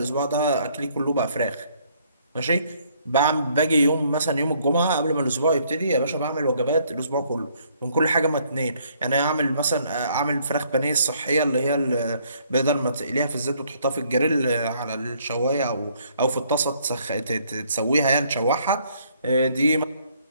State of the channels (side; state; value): both; inverted; correlation -0.65